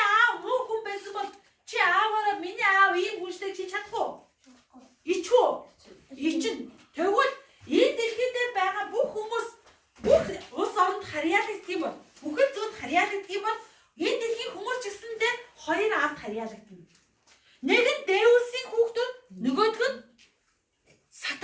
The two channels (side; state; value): both; identical; correlation 1.00